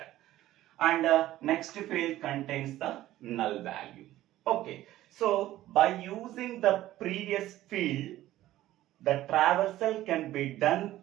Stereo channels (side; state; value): left; quieter; 14.7 dB